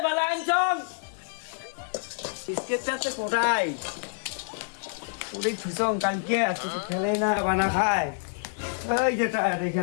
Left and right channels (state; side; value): silent; right; digital silence